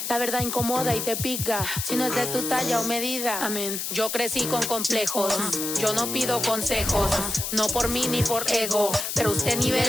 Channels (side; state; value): left; noise; hiss, 3 dB below the sound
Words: la verdad incomoda y te pica. Si no es de tu talla o medida, amén. Yo crecí con complejos, yo no pido consejos, no por mí ni por ego, pero usted ni